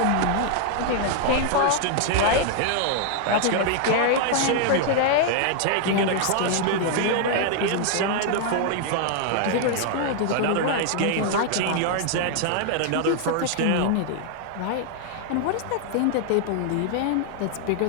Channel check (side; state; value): both; different; correlation 0.00